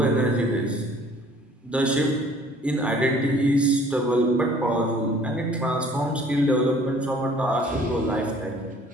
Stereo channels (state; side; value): normal; both; correlation 0.54